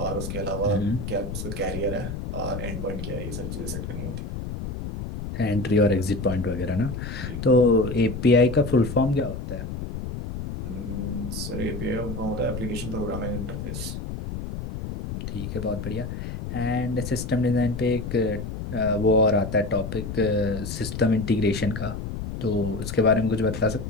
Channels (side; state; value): left; noise; rumble, 6 dB below the sound